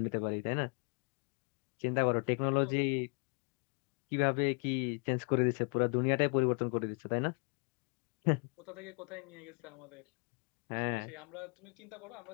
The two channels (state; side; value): quieter; right; 38.1 dB